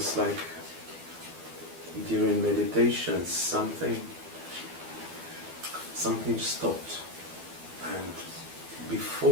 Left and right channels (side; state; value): left; late; 12 ms